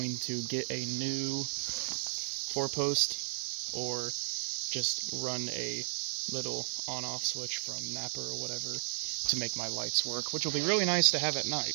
to get a new 4-post or just run a little on-off switch from Napa or whatever to make my lights work, which will be really nice to have at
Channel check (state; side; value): silent; left; 55 dB below the other